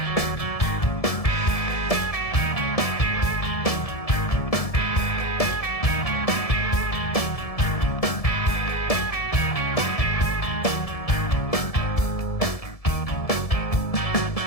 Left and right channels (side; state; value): right; late; 1.7 ms